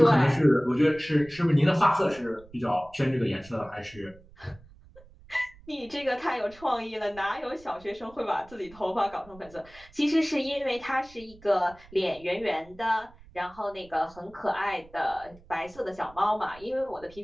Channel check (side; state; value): right; noise; rumble, 23 dB below the sound